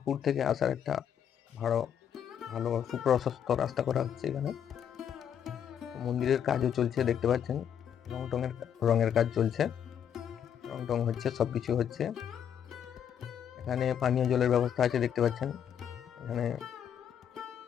থেকে আসার একটা ভালো সুপ্রশস্ত রাস্তা করা হচ্ছে এখানে। মন্দিরের কাজও চলছে দেখতে পাচ্ছেন, রঙের কাজ চলছে, রং হচ্ছে, সবকিছু হচ্ছে। এখানে পানীয় জলের ব্যবস্থা আছে দেখতে পাচ্ছেন, এখানে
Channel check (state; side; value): quieter; right; 8.8 dB